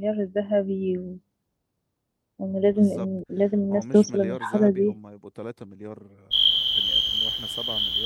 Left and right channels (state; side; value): identical; both; correlation 1.00